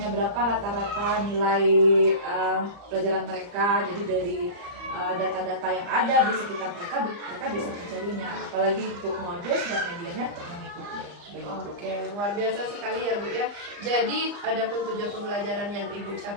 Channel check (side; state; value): left; late; 35 ms